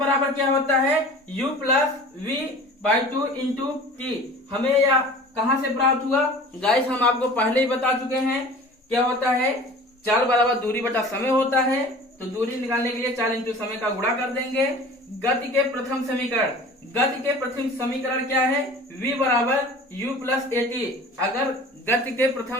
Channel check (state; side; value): normal; both; correlation 0.42